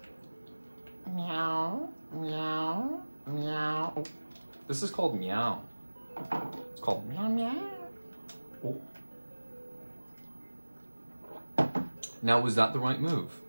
Meow, meow, meow. Oh, this is called meow. It's called meow meow. Oh. Now, was that the right move?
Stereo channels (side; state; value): both; inverted; correlation -1.00